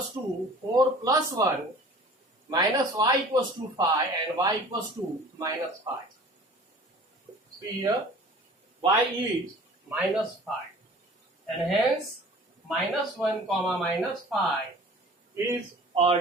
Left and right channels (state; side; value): normal; both; correlation 0.46